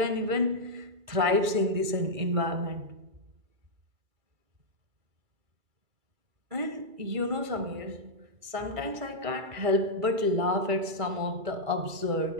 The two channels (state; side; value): late; left; 2.3 ms